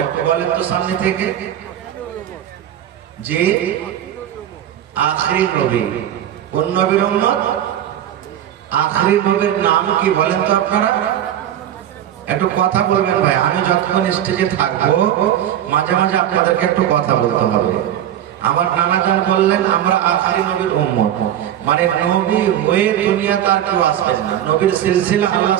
একটু বলেন তো সামনে থেকে? যে আখিরি নবী। কোন নবীর উম্মত? আখিরি নবীর নাম কি বলেন তো আপনারা? একটু কথা বলবেন ভাই, আমি যতক্ষণ স্টেজে থাকবো মাঝে মাঝে আপনাদেরকে একটু কথা বলতে হবে। আমার নানাজান বললেন আমরা আখিরি নবীর উম্মত, মানে নবী হয়ে দুনিয়া তার কেউ আসবেন না, নবীর সিলসিলা আল্লাহ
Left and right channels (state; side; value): quieter; left; 11.1 dB